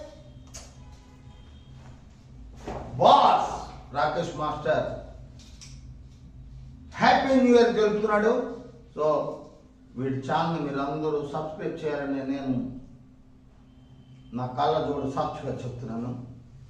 boss Rakesh master happy new year తెలుపుతున్నాడు. సో వీడి ఛానల్ మీరందరూ సబ్స్క్రైబ్ చేయాలని నేను నా కళ్ళ జోడు సాక్షిగా చెప్తున్నాను.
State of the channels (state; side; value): identical; both; correlation 1.00